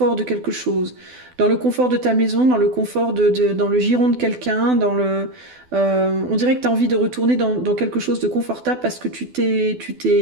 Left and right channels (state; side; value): late; left; 12 ms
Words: de quelque chose. Dans le confort de ta maison, dans le confort dans le giron de quelqu'un, on dirait que t'as envie de retourner dans quelque chose de confortable parce que tu t'es